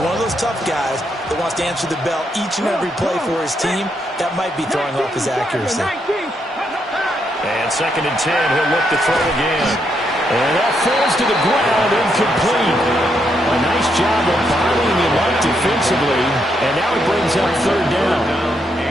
one of those tough guys that wants to answer the bell each and every play for his team. That might be throwing off his accuracy. And 2nd and 10, he'll look to throw again. And that falls to the ground, incomplete. A nice job of bottling him up defensively, and now it brings up 3rd down.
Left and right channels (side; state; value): both; normal; correlation 0.78